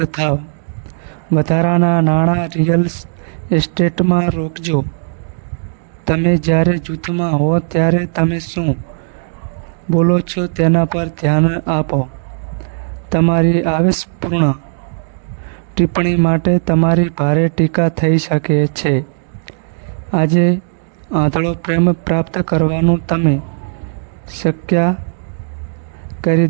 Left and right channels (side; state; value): left; silent; digital silence